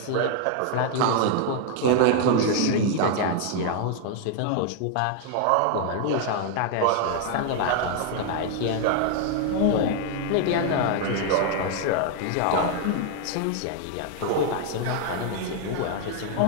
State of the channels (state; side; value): different; both; correlation 0.00